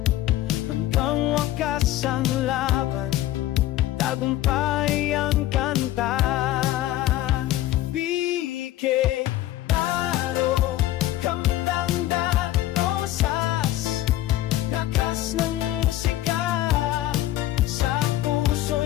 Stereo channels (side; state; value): right; quieter; 14.6 dB